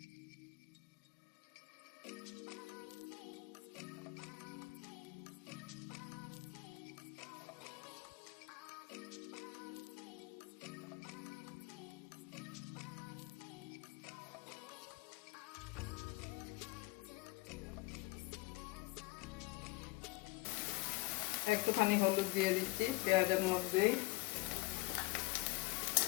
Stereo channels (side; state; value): right; quieter; 21.3 dB